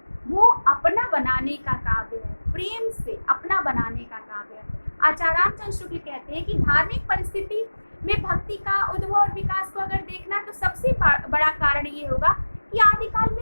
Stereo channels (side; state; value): both; inverted; correlation -1.00